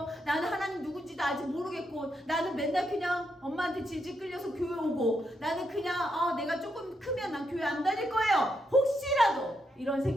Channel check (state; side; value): normal; both; correlation 0.80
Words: 나는 하나님 누군지도 아직 모르겠고 나는 맨날 그냥 엄마한테 질질 끌려서 교회 오고 나는 그냥 내가 조금 크면 난 교회 안 다닐 거예요. 혹시라도 이런